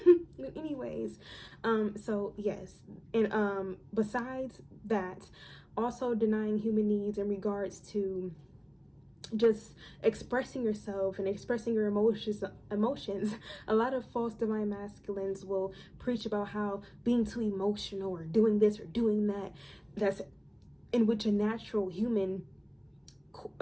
But anyways, so yes, and besides that, also denying human needs in regards to just expressing yourself and expressing your emotions. A lot of false divine masculines will preach about how being too emotional or doing this or doing that, that's in which a natural human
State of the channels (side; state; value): both; identical; correlation 1.00